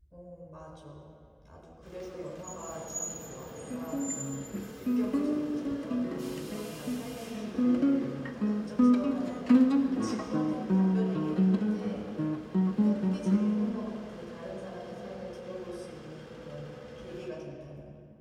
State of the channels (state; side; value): identical; both; correlation 1.00